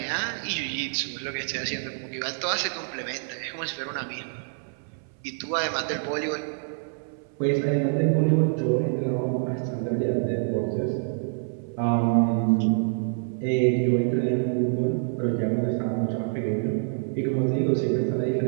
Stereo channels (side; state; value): left; silent; 61 dB below the other